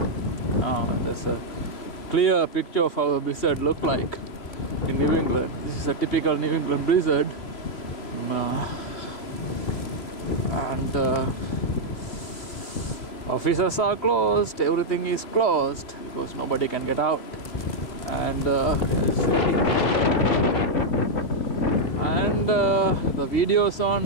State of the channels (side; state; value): right; late; 3.0 ms